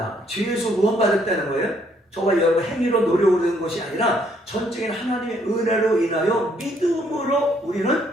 죄에서 구원받았다는 거예요. 저와 여러분 행위로 노력을 얻은 것이 아니라 전적인 하나님의 은혜로 인하여 믿음으로 우리는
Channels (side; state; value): both; normal; correlation 0.68